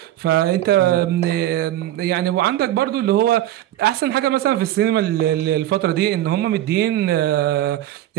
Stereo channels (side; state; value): left; quieter; 13.5 dB